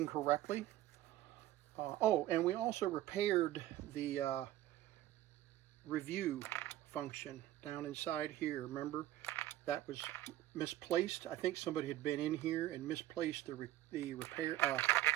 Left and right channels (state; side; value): quieter; left; 14.4 dB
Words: correctly. Oh, and we also repaired the review function down inside here. Remember, that was misplaced. I think somebody had been in here and misplaced the review,